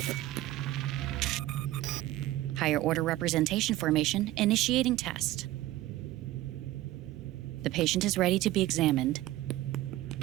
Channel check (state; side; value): quieter; left; 15.8 dB